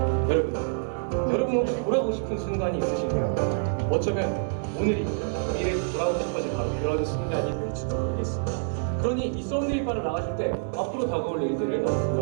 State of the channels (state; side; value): silent; left; digital silence